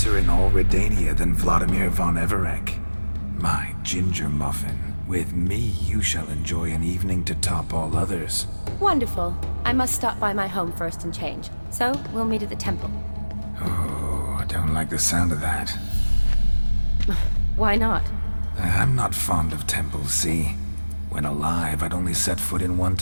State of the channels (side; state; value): both; inverted; correlation -1.00